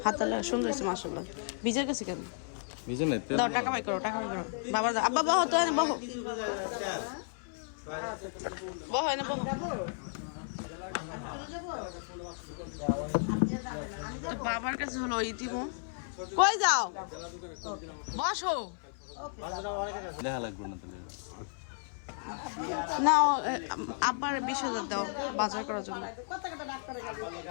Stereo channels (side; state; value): right; silent; 55 dB below the other